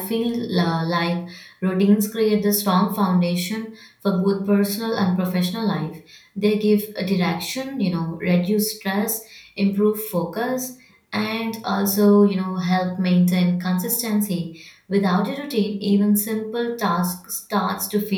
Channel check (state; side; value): identical; both; correlation 1.00